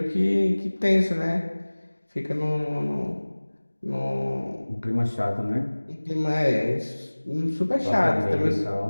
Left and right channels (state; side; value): inverted; both; correlation -1.00